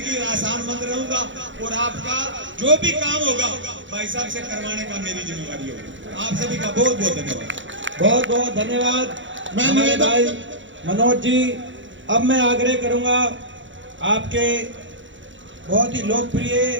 आसान मंद रहूंगा और आपका जो भी काम होगा भाई साहब से करवाने का मेरी जिम्मेवारी होगी। आप सभी का बहुत बहुत धन्यवाद। बहुत बहुत धन्यवाद हमारे भाई मनोज जी। अब मैं आग्रह करूंगा, आपके बहुत ही लोकप्रिय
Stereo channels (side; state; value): left; late; 0.55 ms